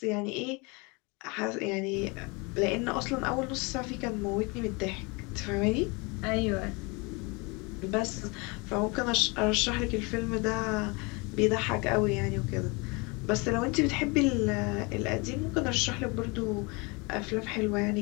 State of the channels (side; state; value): right; quieter; 28.3 dB